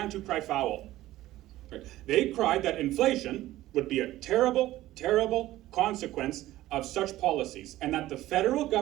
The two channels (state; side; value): quieter; left; 15.5 dB